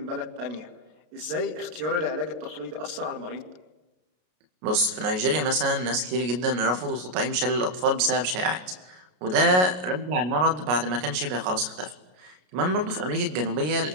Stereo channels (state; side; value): late; left; 33 ms